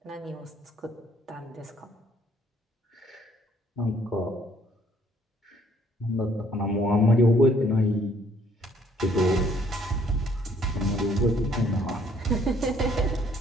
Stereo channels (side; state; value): both; normal; correlation 0.63